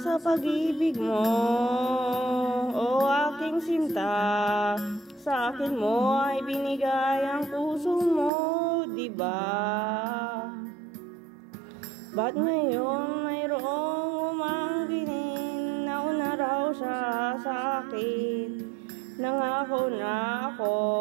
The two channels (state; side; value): drops out; left; at 8.3 s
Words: pag-ibig mo, o aking sinta. Sa akin mo ay binigay ang puso mo, diba? Ba't ngayon mayroong umangkinin? Nauna raw siya sa akin. Nangako na ako,